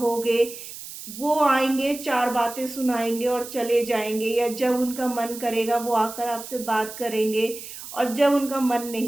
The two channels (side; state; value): right; noise; hiss, 12 dB below the sound